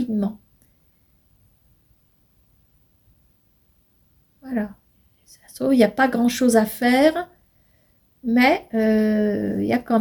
Voilà. Ça se trouve, il n'y a pas grand-chose à faire, mais il y a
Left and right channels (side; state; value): both; identical; correlation 1.00